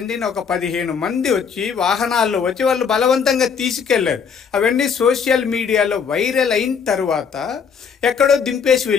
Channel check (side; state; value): right; quieter; 6.5 dB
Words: ఒక 15 మంది వచ్చి వాహనాల్లో వచ్చి వాళ్ళు బలవంతంగా తీసుకెళ్లారు. అవన్నీ సోషల్ మీడియాలో వైరల్ అయిన తర్వాత ఎక్కడో దింపేసి